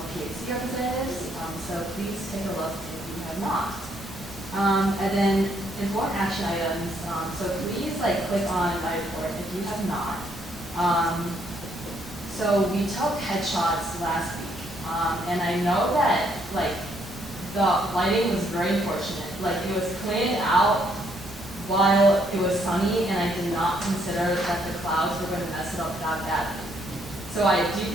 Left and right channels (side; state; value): both; normal; correlation 0.70